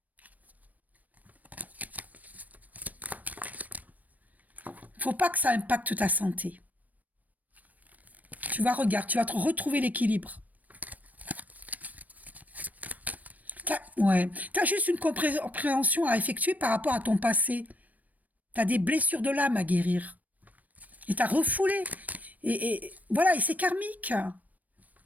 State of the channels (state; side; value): late; left; 0.076 ms